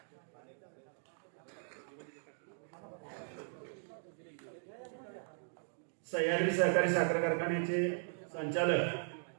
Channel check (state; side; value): silent; left; digital silence